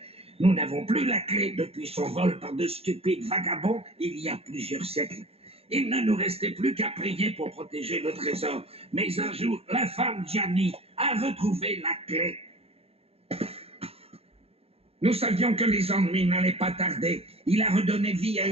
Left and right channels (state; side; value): late; left; 0.29 ms